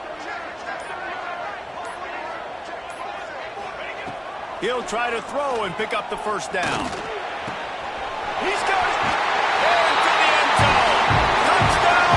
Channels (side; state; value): both; identical; correlation 1.00